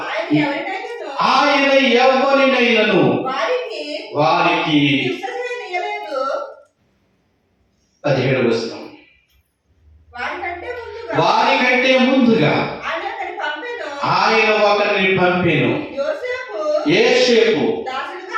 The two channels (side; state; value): both; identical; correlation 1.00